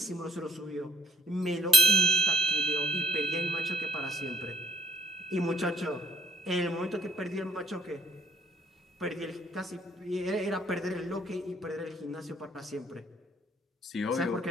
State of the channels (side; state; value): both; normal; correlation 0.63